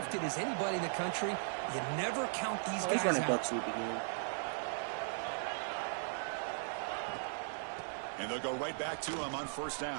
as anybody in the country. You never count these guys he's running out. buck sweep again. And they'll go right back to him on 1st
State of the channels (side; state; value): left; silent; digital silence